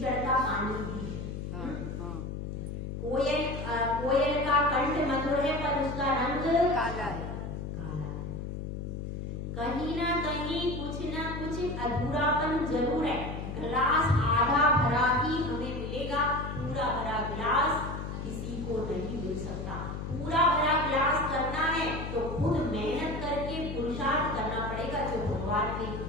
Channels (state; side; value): noise; left; hum, 6 dB below the sound